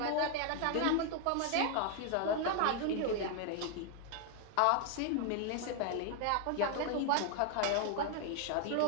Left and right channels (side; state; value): both; different; correlation 0.00